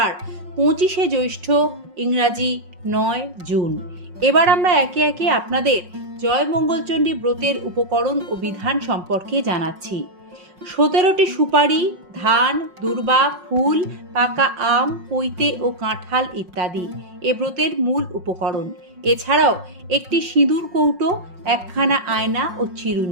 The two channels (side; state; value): left; late; 5.5 ms